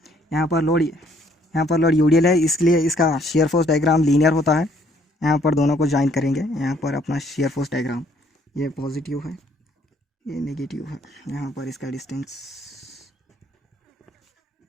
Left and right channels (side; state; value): both; normal; correlation 0.64